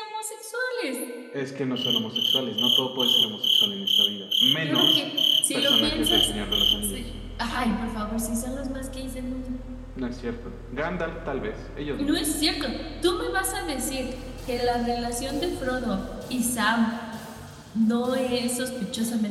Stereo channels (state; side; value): identical; both; correlation 1.00